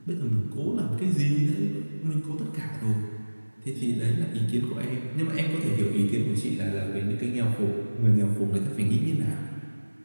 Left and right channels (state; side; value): inverted; both; correlation -1.00